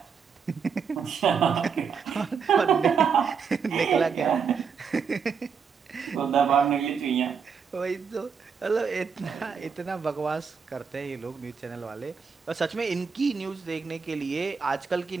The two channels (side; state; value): left; quieter; 6.2 dB